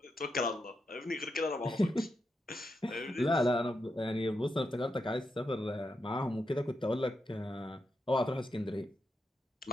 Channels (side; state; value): both; normal; correlation 0.85